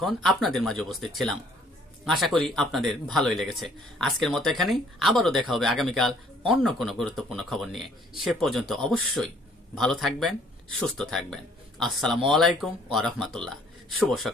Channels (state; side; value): normal; both; correlation 0.61